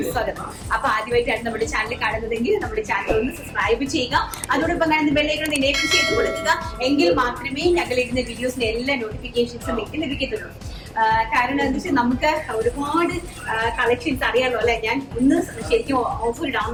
സ്വാഗതം. അപ്പൊ ആദ്യമായിട്ടാണ് നമ്മുടെ ചാനൽ കാണുന്നതെങ്കിൽ നമ്മുടെ ചാനൽ ഒന്ന് സബ്സ്ക്രൈബ് ചെയ്യുക. അതോടൊപ്പം കാണുന്ന ബെല്ലൈക്കൺ എനേബിൾ ചെയ്ത് കൊടുക്കുക. എങ്കിൽ മാത്രമേ ഞങ്ങൾ ഇടുന്ന വീഡിയോസിന്റെ എല്ലാ നോട്ടിഫിക്കേഷൻസും നിങ്ങൾക്ക് ലഭിക്കത്തുള്ളൂ. കാരണം എന്താ വെച്ചാൽ നമുക്ക് ഒരുപാട് കളക്ഷൻസ് അറിയാമല്ലോ അല്ലെ. ഞാൻ ഇന്ന് ശരിക്കും ഓഫർ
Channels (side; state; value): both; identical; correlation 1.00